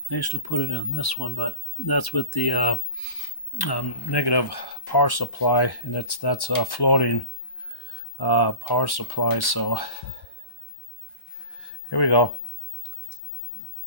I used to put it in this one, but that's with the negative power supply, and that's a floating power supply. So here we go.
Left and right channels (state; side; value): late; right; 1.1 ms